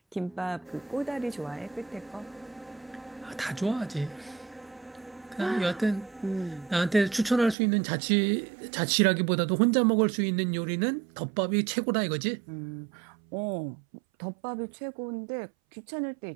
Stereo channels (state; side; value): drops out; left; at 7.6 s